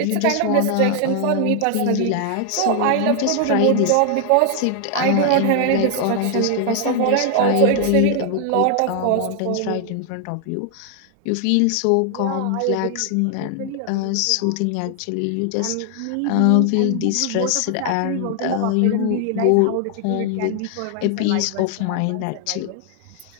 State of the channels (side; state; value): both; different; correlation 0.00